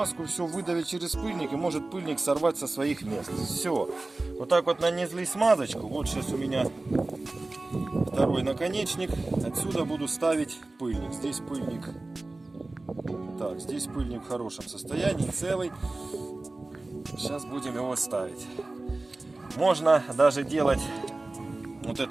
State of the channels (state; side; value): quieter; left; 3.1 dB